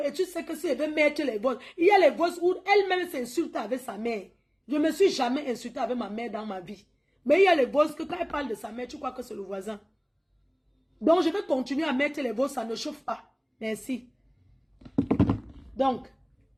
Et tu sais que si elle veut mettre les voix, il y a les voix où elle-même s'insulte avec sa mère. Je ne me suis jamais insultée avec ma mère dans ma vie. Mais il y a les voix que quand elle parle de sa mère, tu crois que c'est le voisin. Donc, je vais continuer à mettre les voix, ça ne chauffe pas. Merci. Donc,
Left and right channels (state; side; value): identical; both; correlation 1.00